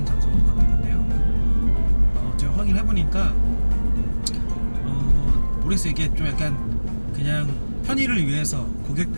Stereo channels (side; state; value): both; inverted; correlation -1.00